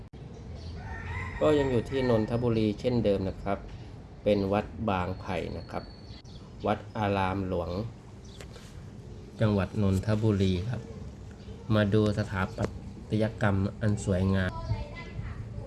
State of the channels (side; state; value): both; identical; correlation 1.00